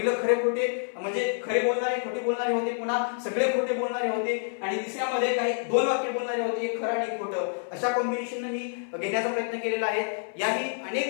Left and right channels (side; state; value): right; silent; 60 dB below the other